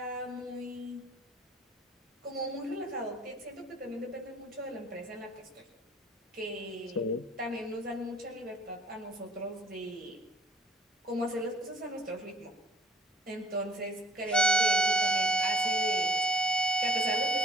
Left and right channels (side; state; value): both; normal; correlation 0.58